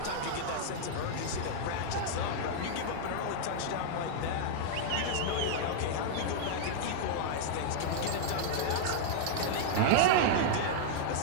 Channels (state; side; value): different; both; correlation -0.01